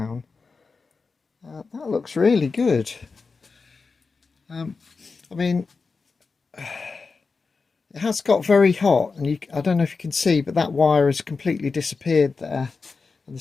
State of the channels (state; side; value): quieter; right; 4.5 dB